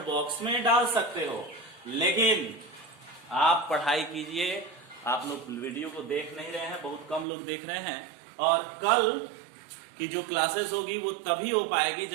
बॉक्स में डाल सकते हो, लेकिन आप पढ़ाई कीजिए। आप लोग वीडियो को देख नहीं रहे हैं, बहुत कम लोग देख रहे हैं, और कल की जो क्लासेस होगी वो तभी हो पाएगी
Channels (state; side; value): drops out; left; at 7.2 s